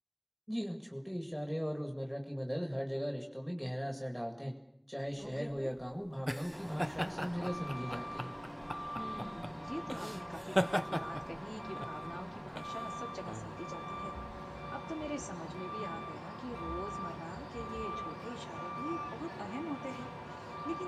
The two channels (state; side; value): identical; both; correlation 1.00